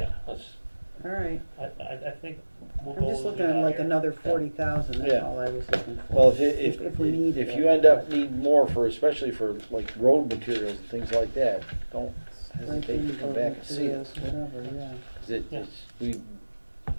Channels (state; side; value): inverted; both; correlation -1.00